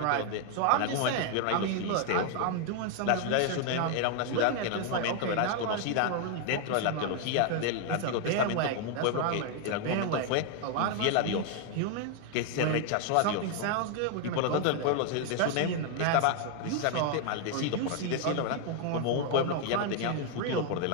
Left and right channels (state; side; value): different; both; correlation 0.00